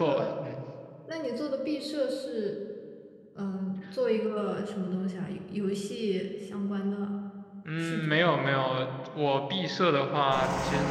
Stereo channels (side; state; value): both; identical; correlation 1.00